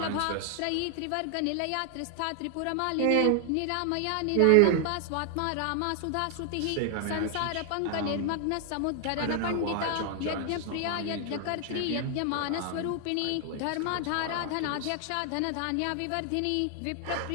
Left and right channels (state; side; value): different; both; correlation 0.00